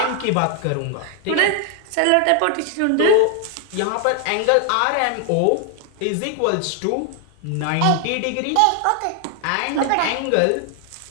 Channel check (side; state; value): both; different; correlation 0.00